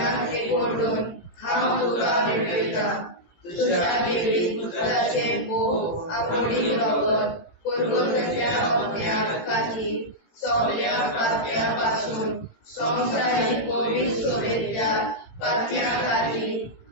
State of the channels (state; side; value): late; right; 18 ms